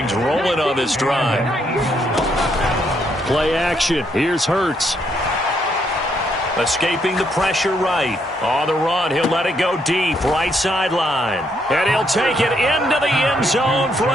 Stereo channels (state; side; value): normal; both; correlation 0.74